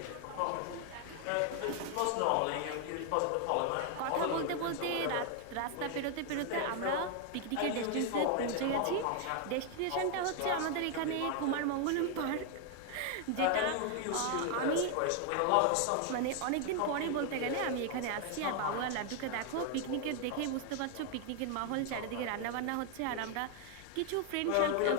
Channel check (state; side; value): different; both; correlation 0.00